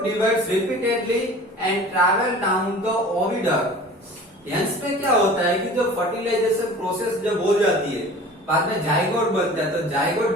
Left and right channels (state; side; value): normal; both; correlation 0.42